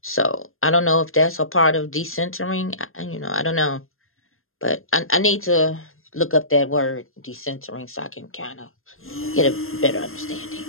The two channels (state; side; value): late; right; 0.61 ms